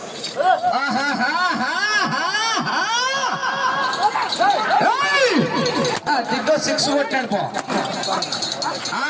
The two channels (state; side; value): identical; both; correlation 1.00